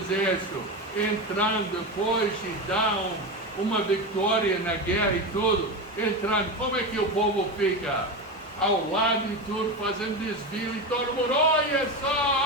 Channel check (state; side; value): normal; both; correlation 0.19